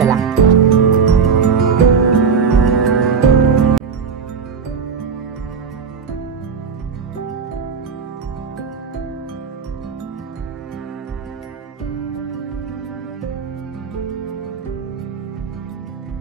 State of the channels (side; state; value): left; quieter; 6.1 dB